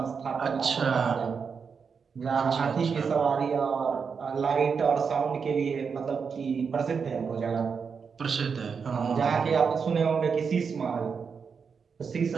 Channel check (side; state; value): left; quieter; 5.9 dB